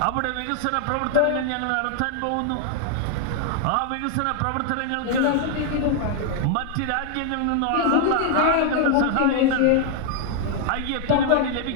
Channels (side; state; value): both; different; correlation 0.00